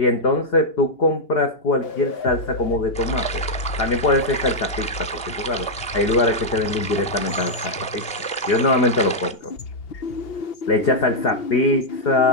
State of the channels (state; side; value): late; right; 2.8 ms